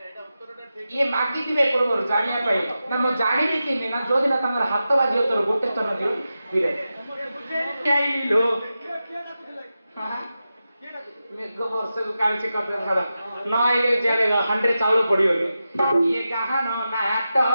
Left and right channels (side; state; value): both; inverted; correlation -0.91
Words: ଇଏ ମାଗିଥିବେ ପୂର୍ବରୁ ଜାଣିବା ପାଇଁ ନା ମୁଁ ଜାଣିବି କେମିତି ନା ଯୋଉଦିନ ତାଙ୍କର ହାତ ବାଜିବ ତୋର ଗୋଟେ ସ୍ତନ ଦିଅ ହିରେ ମେଘ ବର୍ଷକୁ କାଳୁଛି କଥା ଛାଡ ନ ଆଇଲେ ଚାଲେ ହାଣ୍ଡିରେ ଚାଉଳ ପଡିବନି ଇଏ ଗାହାନ